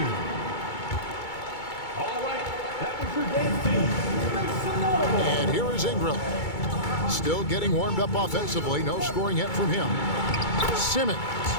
And here is Ingram. Still getting warmed up offensively. No scoring yet from him. Simmons.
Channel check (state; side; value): late; right; 2.3 ms